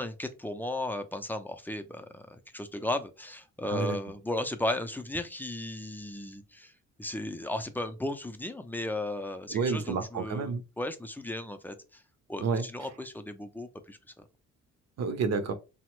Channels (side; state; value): both; normal; correlation 0.49